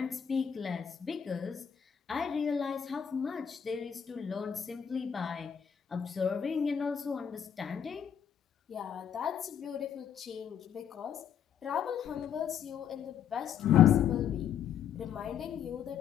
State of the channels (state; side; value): quieter; right; 8.4 dB